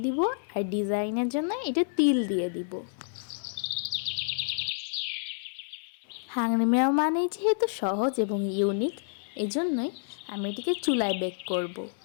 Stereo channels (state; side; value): silent; right; digital silence